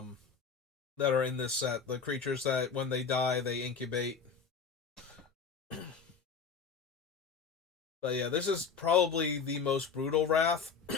that are in this set. The creatures that, when they die, they incubate. But yeah, this is probably the most brutal Wrath,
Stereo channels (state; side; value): quieter; right; 5.8 dB